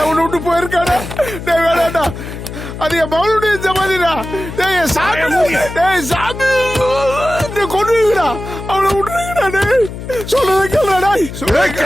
உன்னை விட்டு போயிருக்காடா டேய் வேடாடா அது என் மகளுடைய ஜமாதிடா டேய் சாமி டேய் சாமி நீ கொண்டுடா அவனை விட்டுறீங்கடா டேய் சொல்றத கேளுடா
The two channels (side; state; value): left; noise; hum, 10 dB below the sound